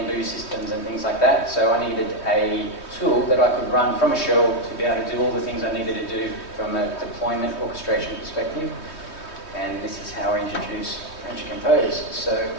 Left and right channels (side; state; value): right; late; 3.2 ms